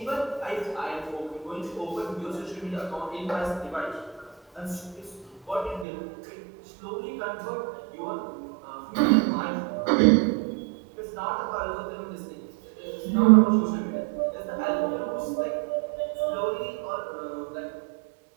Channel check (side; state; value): left; drops out; at 5.9 s